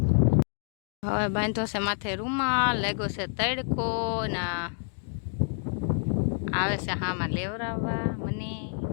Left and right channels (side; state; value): right; silent; 59 dB below the other